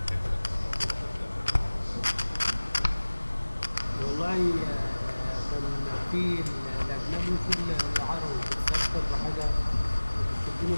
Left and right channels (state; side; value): inverted; both; correlation -1.00